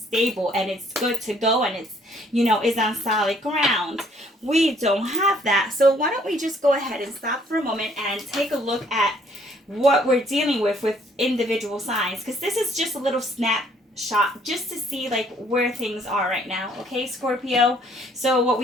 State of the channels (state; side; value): normal; both; correlation 0.63